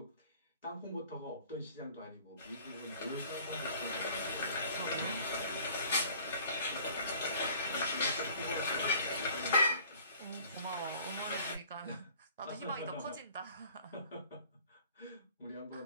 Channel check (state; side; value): inverted; both; correlation -0.51